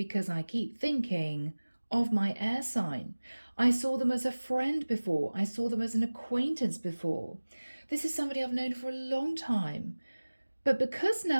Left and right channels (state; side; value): inverted; both; correlation -1.00